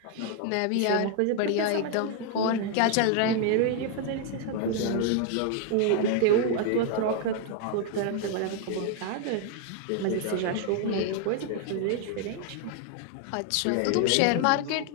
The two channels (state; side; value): different; both; correlation 0.00